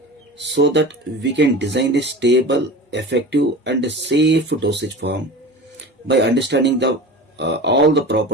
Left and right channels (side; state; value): both; normal; correlation 0.34